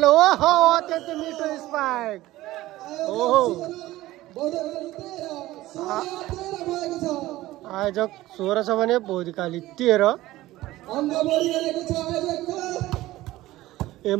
अत्यन्तै मिठो स्पाइक। आयोजक 16 छ भने बौद्धिकाली 13।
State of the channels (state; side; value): quieter; left; 16.8 dB